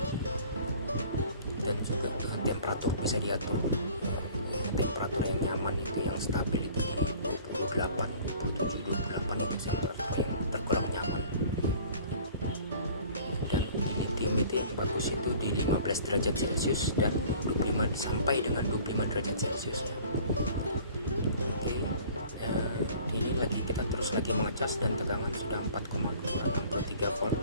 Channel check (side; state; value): both; inverted; correlation -0.48